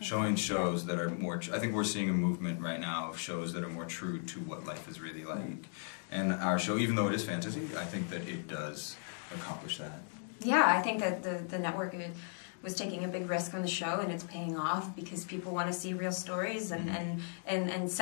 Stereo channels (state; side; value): silent; right; 54 dB below the other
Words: Showing shows that are more, I think we're seeing a movement right now of shows that are more true to what life is really like. And our show, even though it is fantasy, I think that it does accomplish that. Yeah, I think that the network was taking a big risk on the show, and it's paying off because people want to see real stories, and